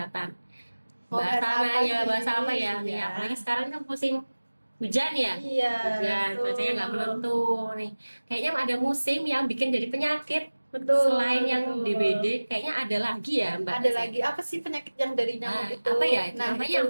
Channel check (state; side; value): inverted; both; correlation -1.00